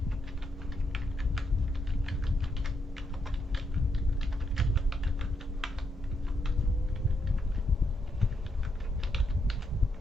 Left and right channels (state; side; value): normal; both; correlation 0.79